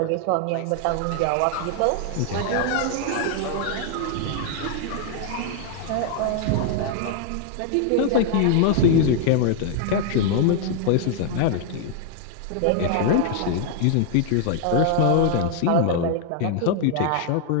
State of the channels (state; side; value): different; both; correlation 0.00